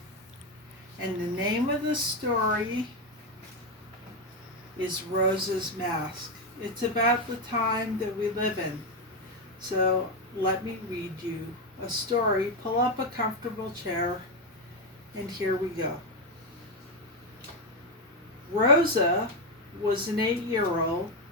and the name of the story is Rosa's Mask. It's about the time that we live in. So let me read you a story. Pull up a comfortable chair, and here we go. Rosa was an 8-year-old.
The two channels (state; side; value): normal; both; correlation 0.07